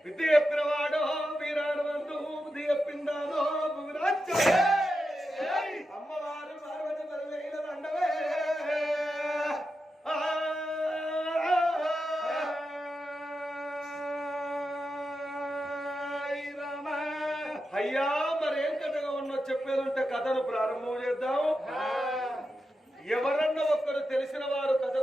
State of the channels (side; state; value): both; normal; correlation 0.89